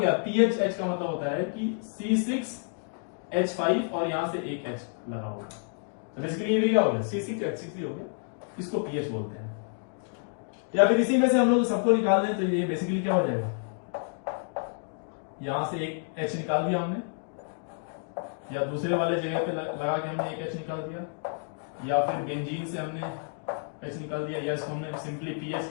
है। PHH का मतलब होता है कि C6H5 और यहां से एक H लगा हुआ है, तो बेसिकली ये भी क्या हो गया, C6H6 हो गया, इसको पीएच बोलते हैं। या फिर इसी में से हम लोग सबको निकाल दें तो ये बेसिकली क्या हो जाएगा, यहां से एक H निकाल दिया हमने, या दूसरे वाले जगह पे लगा के हमने एक H निकाल दिया, या फिर बेंजीन से हमने H निकाल दिया, या इसको हमने सिंपली पीएच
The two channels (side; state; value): right; silent; 58 dB below the other